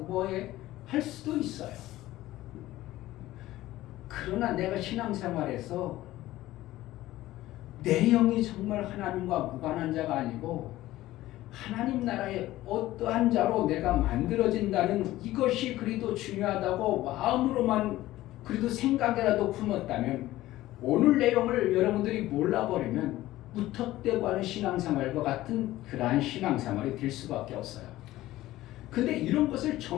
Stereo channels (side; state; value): right; quieter; 16.0 dB